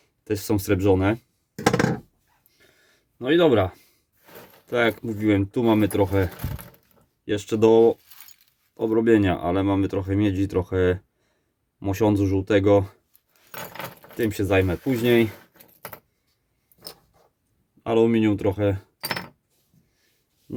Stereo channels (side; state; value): both; identical; correlation 1.00